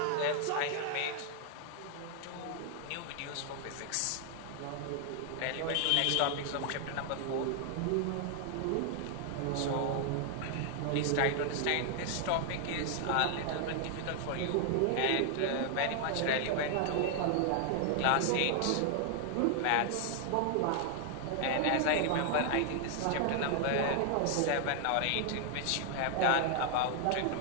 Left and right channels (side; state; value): both; different; correlation 0.00